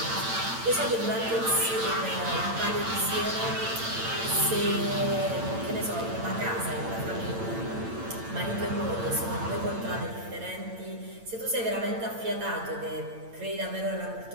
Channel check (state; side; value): late; left; 8.9 ms